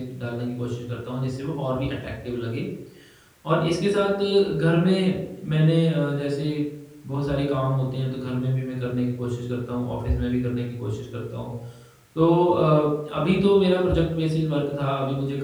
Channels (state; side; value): identical; both; correlation 1.00